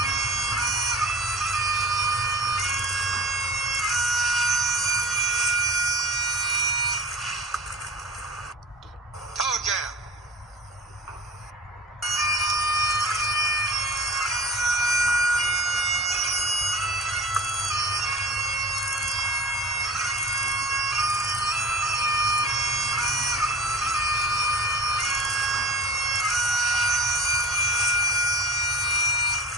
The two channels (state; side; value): normal; both; correlation 0.36